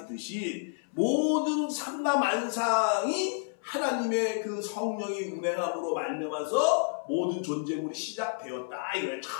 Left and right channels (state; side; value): silent; right; 58 dB below the other